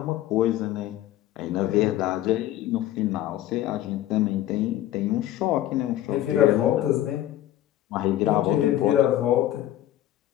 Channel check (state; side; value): quieter; right; 13.4 dB